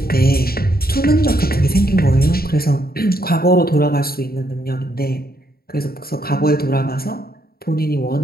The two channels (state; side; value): late; right; 0.44 ms